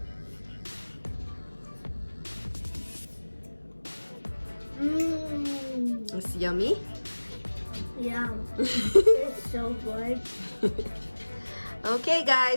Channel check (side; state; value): both; inverted; correlation -1.00